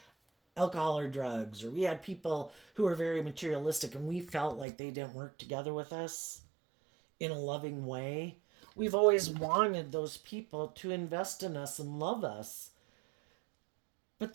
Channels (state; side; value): drops out; left; at 4.7 s